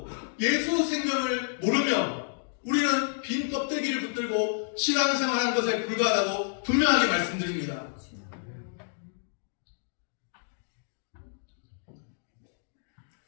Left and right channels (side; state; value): right; silent; digital silence